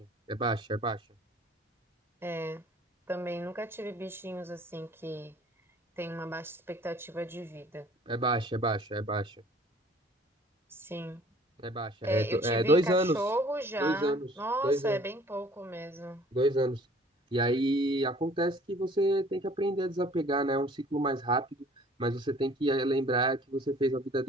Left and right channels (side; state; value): both; normal; correlation 0.53